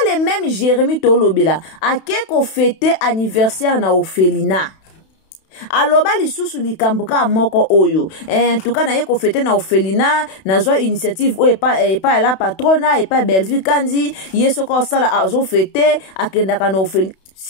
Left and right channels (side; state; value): right; late; 32 ms